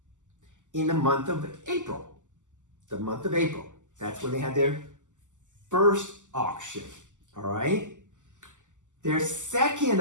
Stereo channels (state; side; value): late; left; 0.86 ms